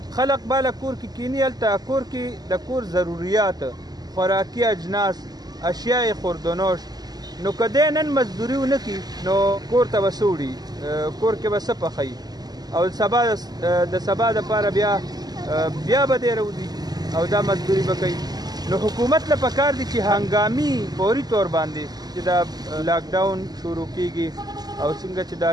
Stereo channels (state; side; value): late; left; 0.19 ms